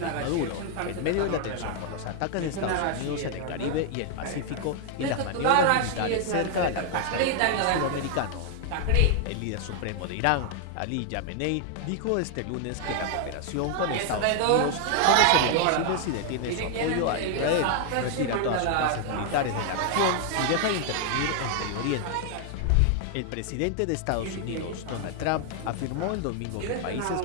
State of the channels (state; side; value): different; both; correlation 0.00